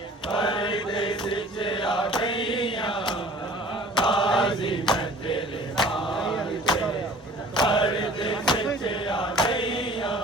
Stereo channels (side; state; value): both; normal; correlation 0.48